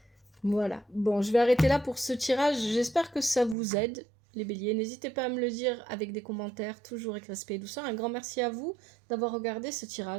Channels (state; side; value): drops out; left; at 3.6 s